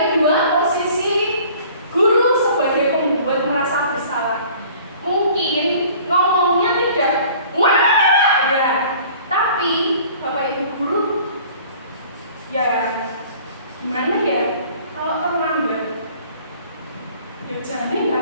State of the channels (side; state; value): both; inverted; correlation -0.50